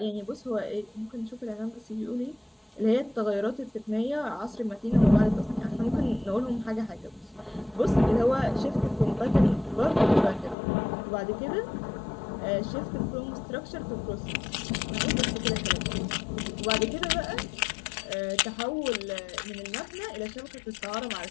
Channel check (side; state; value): right; drops out; at 10.6 s